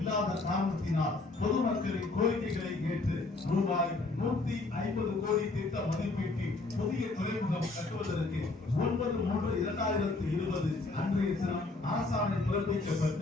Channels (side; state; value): right; quieter; 3.3 dB